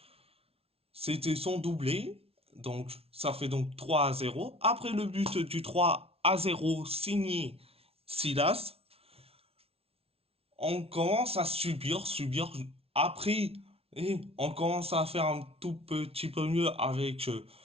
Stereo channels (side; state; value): left; late; 0.28 ms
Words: c'était son doublé. Donc, ça fait donc 3-0. Après le but du 3 3-0 signé Silas. On commence à subir. Après, on commence à faire un tout petit peu mieux avec